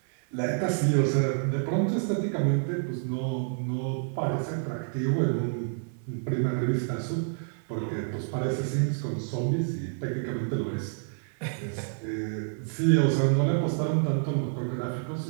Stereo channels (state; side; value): silent; left; 55 dB below the other